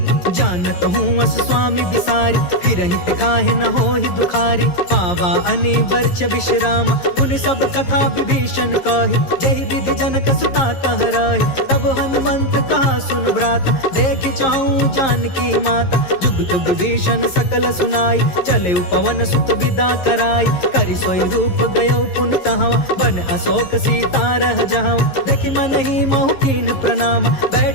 जानत हूँ अस स्वामी बिसारी फिरहि ते काहे न होहि दुखारी। पावा अनि वर्ष विश्राम उन सब कथा विभीषण कही। जहि विधि जनक सुता कह रही तब हनुमंत कहा सुन भ्राता। देख चाहूं जानकी माता जुगत विभीषण सकल सुनाई। चले पवन सुत विदा कराई करि सोई रूप गयो पुनि तहवा। बन अशोक सीता रह जहाँ देखि मन ही महु कीन प्रणाम।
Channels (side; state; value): right; late; 11 ms